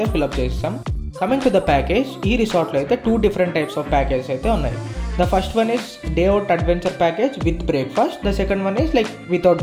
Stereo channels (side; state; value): both; identical; correlation 1.00